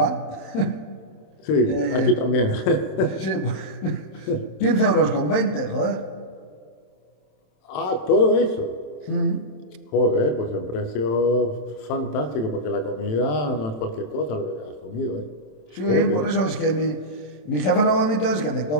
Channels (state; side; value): late; right; 27 ms